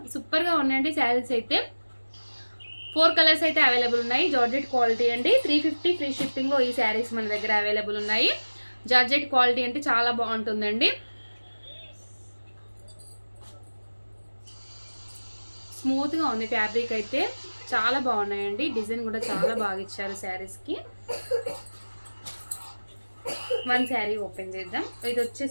సూపర్గా ఉన్నాయండి శారీస్ అయితే. 4 కలర్స్ అయితే అవైలబుల్ ఉన్నాయి. జార్జెట్ క్వాలిటీ అండి. 350 ఫ్రీ షిప్పింగ్లో ఈ శారీస్ మన దగ్గర అవైలబుల్ ఉన్నాయి. జార్జెట్ క్వాలిటీ అంటే చాలా బాగుంటుందండి. స్మూత్గా ఉంది ఫ్యాబ్రిక్ అయితే, చాలా బాగున్నాయండి. డిజైన్ కూడా చాలా బాగా ఇచ్చారు శారీస్కి. వన్ శారీ ఓపెన్ చేద్దాం. ఇది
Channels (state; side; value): inverted; both; correlation -1.00